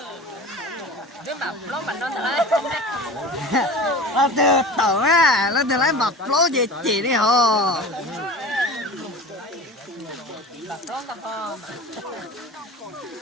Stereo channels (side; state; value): both; normal; correlation 0.35